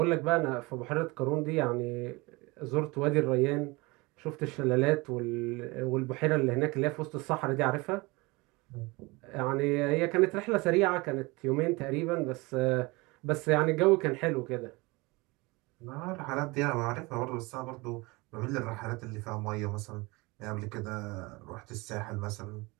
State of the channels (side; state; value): left; quieter; 24.5 dB